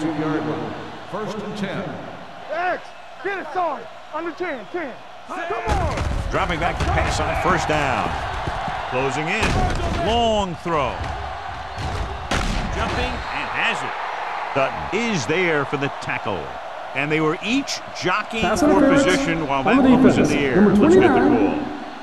line. First and 10. X, get it started. Under 10, 10. Come on. Dropping back to pass on first down. Closing in. Long throw. Jumping and has it. Dutton is there for the tackle. And they were each jockeying for position while that one was in the air. Let's get the call.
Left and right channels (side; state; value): both; identical; correlation 1.00